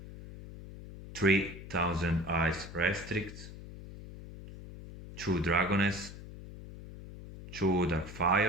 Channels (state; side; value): noise; left; hum, 14 dB below the sound